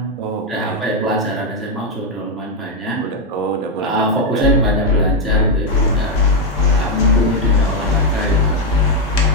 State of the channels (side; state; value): both; normal; correlation 0.04